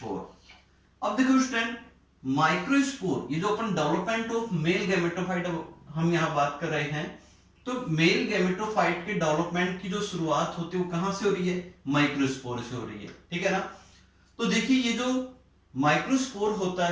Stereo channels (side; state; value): both; identical; correlation 1.00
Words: अब देखो स्टूडेंट, माइक्रोस्पोर ये जो अपन डेवलपमेंट ऑफ मेल गैमेटोफाइट हम यहां बात कर रहे हैं, तो मेल गैमेटोफाइट के डेवलपमेंट की जो शुरुआत होती है वो कहां से हो रही है, माइक्रोस्पोर से हो रही है, ठीक है ना। तो देखिए ये जो माइक्रोस्पोर होता